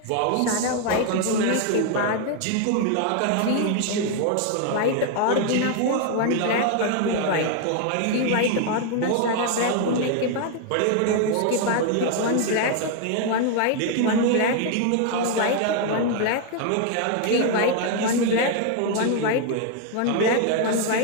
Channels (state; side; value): different; both; correlation 0.00